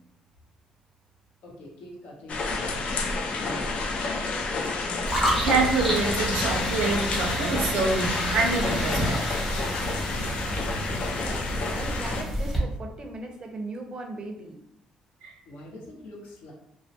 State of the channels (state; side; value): normal; both; correlation 0.58